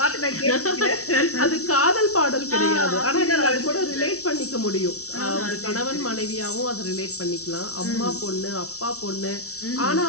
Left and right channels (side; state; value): right; late; 0.65 ms